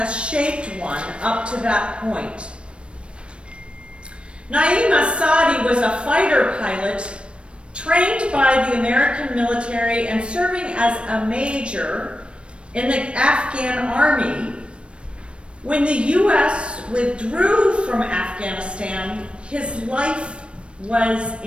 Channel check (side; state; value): left; late; 0.058 ms